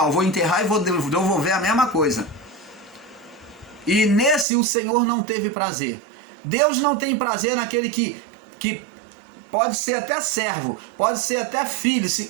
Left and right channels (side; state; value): left; drops out; at 4.5 s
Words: vou enterrar e vou devolver a mesma coisa. E nesse o Senhor não teve prazer. Deus não tem prazer naquele que pode ser até servo, pode ser até filho,